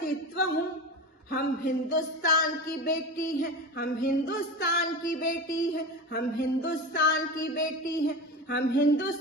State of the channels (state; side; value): normal; both; correlation 0.26